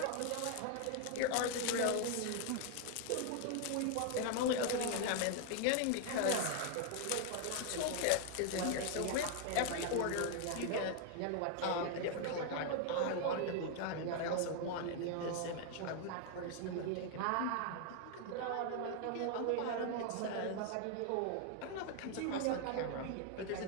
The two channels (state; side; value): different; both; correlation 0.00